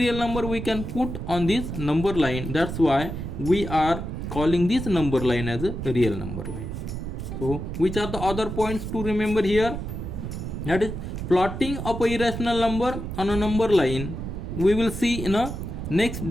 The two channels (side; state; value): right; noise; rumble, 6 dB below the sound